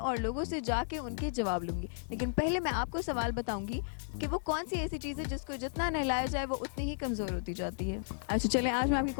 लोगों से जाके उनके जवाब लूंगी। लेकिन पहले मैं आपको सवाल बताऊंगी कि वो कौन सी ऐसी चीज़ है जिसको जितना नहलाया जाए वो उतनी ही कमज़ोर होती जाती है। अच्छा चलें, आज मैं आपकी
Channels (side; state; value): right; silent; 55 dB below the other